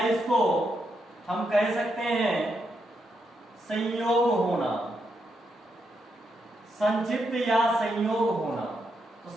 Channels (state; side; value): normal; both; correlation 0.81